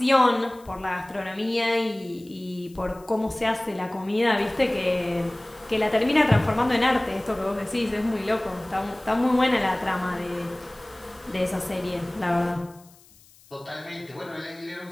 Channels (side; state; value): left; noise; hiss, 26 dB below the sound